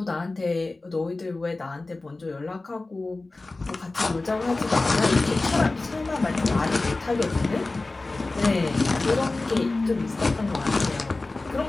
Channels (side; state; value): right; quieter; 3.2 dB